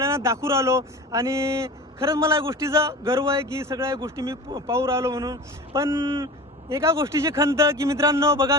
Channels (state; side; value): normal; both; correlation 0.35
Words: दाखवून राहिलो. आणि खरंच मला या गोष्टीचा गर्व आहे की सगळ्या गोष्टी मी पाहू राहिलो म्हणून. पण एका गोष्टीची खंत की मित्रांनो बघा,